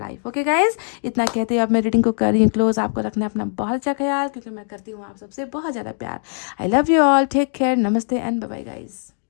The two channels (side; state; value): right; silent; 65 dB below the other